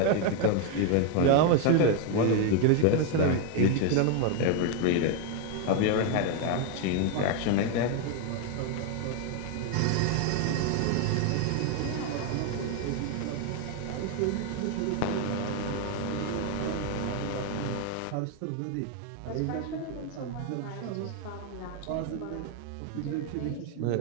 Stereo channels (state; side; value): different; both; correlation 0.01